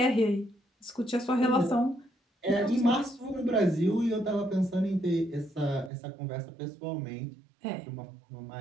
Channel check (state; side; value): drops out; left; at 5.9 s